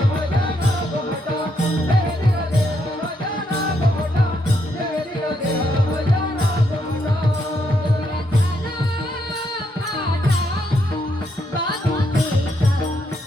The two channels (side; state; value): both; normal; correlation 0.77